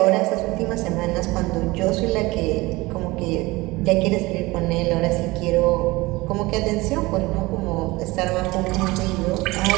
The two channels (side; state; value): left; quieter; 21.5 dB